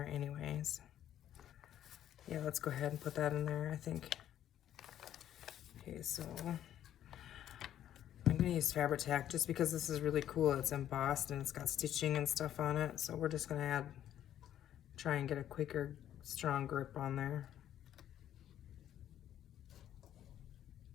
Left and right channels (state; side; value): quieter; right; 11.2 dB